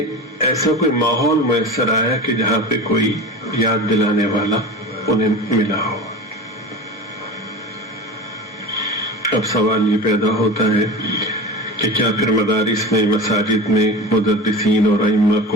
ایسا کوئی ماحول میسر آیا کہ جہاں پہ کوئی یاد دلانے والا انہیں ملا ہو۔ اب سوال یہ پیدا ہوتا ہے کہ کیا پھر مدارس میں، مساجد میں مدرسین اور ائمہ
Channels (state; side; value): normal; both; correlation 0.30